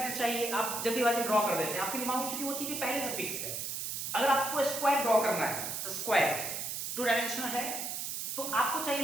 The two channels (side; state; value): right; noise; hiss, 4 dB below the sound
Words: चाहिए। आप जल्दीबाजी में ड्रॉ कर देते हैं, आपके दिमाग में चूंकि वो चीजें पहले से फिक्स्ड है। अगर आपको स्क्वायर ड्रॉ करना है, स्क्वायर 2 डायमेंशनल है, तो आपको